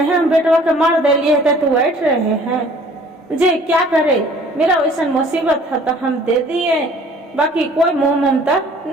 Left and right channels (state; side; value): normal; both; correlation 0.53